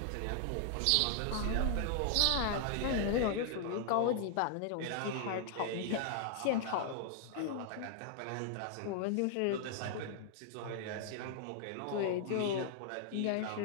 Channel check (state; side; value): different; both; correlation -0.01